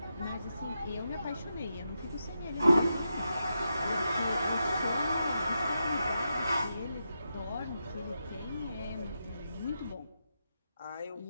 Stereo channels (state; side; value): inverted; both; correlation -0.86